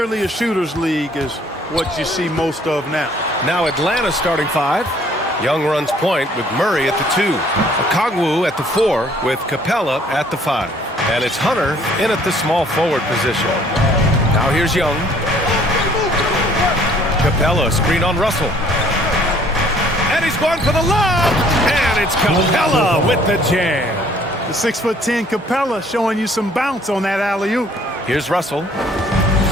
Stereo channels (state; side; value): normal; both; correlation 0.59